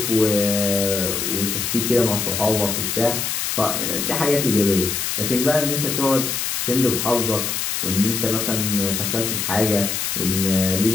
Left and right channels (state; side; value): noise; left; hiss, 1 dB below the sound